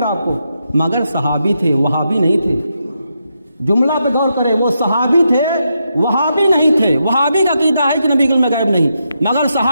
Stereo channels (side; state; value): both; inverted; correlation -0.83